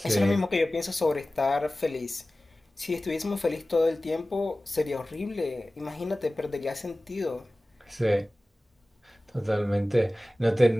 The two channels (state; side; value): normal; both; correlation 0.97